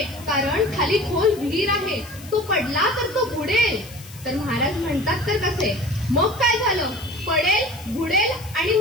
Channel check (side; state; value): left; noise; hiss, 19 dB below the sound